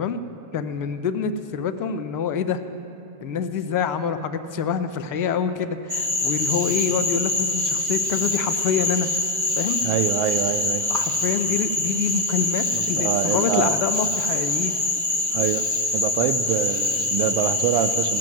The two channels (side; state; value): left; late; 7.1 ms